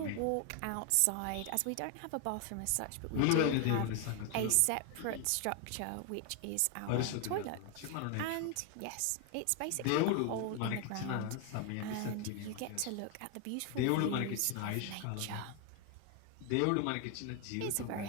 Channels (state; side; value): different; both; correlation 0.01